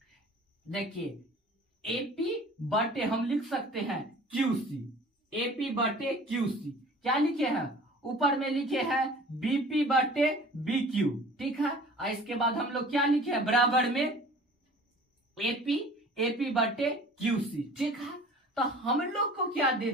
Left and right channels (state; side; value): normal; both; correlation 0.46